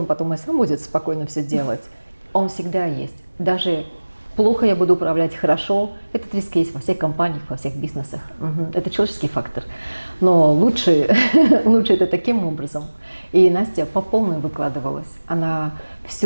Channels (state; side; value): inverted; both; correlation -1.00